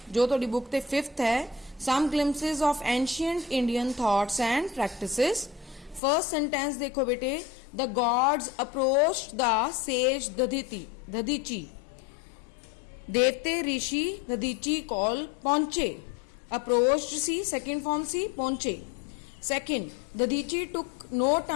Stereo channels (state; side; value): drops out; right; at 6.0 s